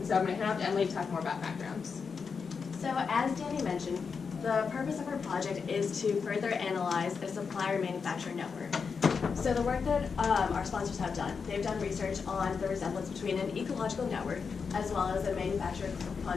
so I'm going to hand off to Emily to talk more about backgrounds. So as Danny mentioned, the purpose of our project is to further analyze a supplier-manufacturer network. So the work that our sponsors have done, they've done research on the resemblance between an ecological network as well as a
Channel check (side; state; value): right; quieter; 5.6 dB